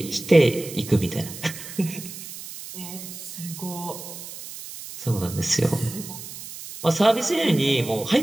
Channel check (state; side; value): noise; right; hiss, 12 dB below the sound